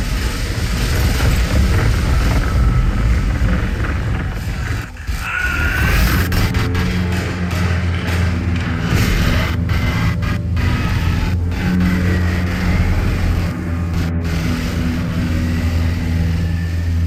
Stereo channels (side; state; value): both; identical; correlation 1.00